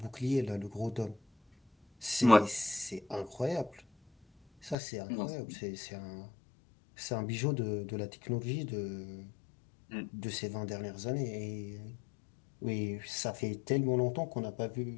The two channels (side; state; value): right; drops out; at 4.8 s